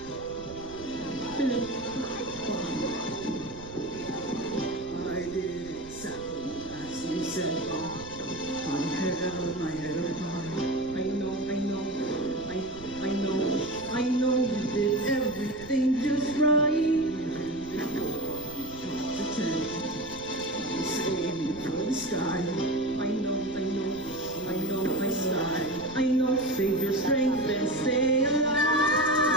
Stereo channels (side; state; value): right; noise; rumble, 17 dB below the sound